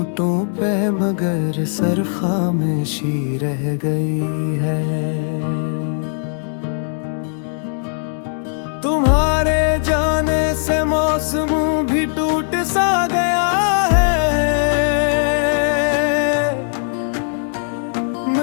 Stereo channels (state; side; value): silent; right; 61 dB below the other